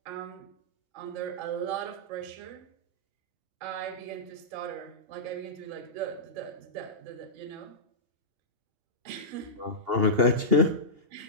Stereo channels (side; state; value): left; late; 2.8 ms